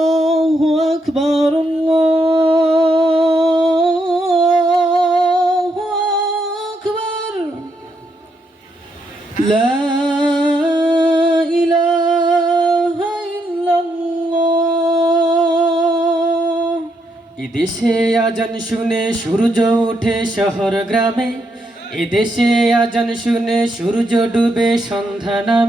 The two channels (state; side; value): normal; both; correlation 0.78